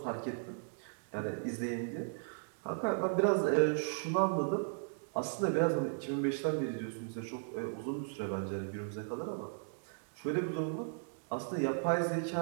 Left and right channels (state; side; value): silent; left; digital silence